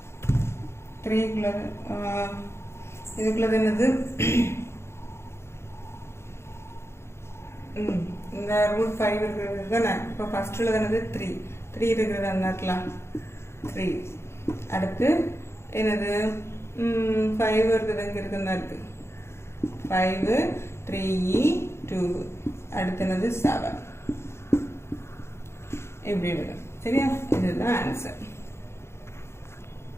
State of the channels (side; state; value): right; late; 0.13 ms